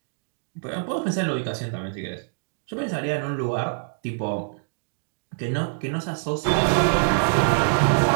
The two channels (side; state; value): left; silent; 62 dB below the other